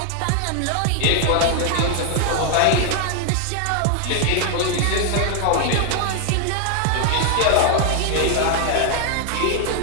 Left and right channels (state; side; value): different; both; correlation 0.00